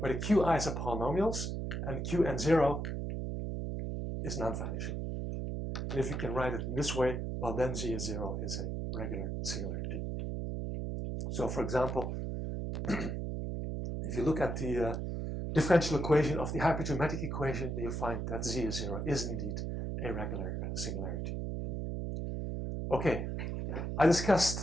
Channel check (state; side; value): noise; right; hum, 3 dB below the sound